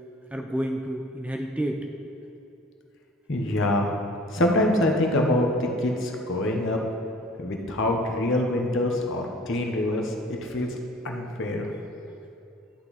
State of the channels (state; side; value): normal; both; correlation 0.48